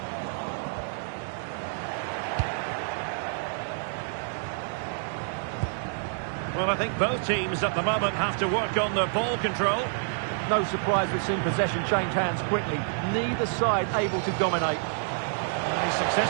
Well, I think both teams at the moment have to work on their ball control. No surprise we've seen possession change hands quickly. Neither side able to dominate. He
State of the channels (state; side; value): silent; left; digital silence